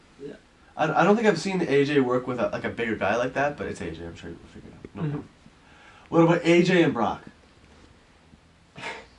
Yeah. I don't think I've seen AJ work with a bigger guy like that, but it's AJ. I'm sure you'll figure it out. No problem. What about AJ and Brock?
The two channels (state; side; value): identical; both; correlation 1.00